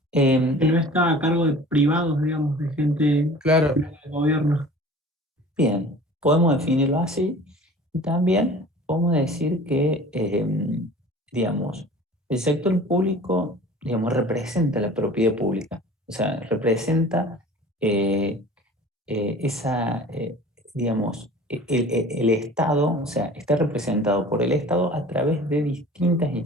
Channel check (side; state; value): both; normal; correlation 0.44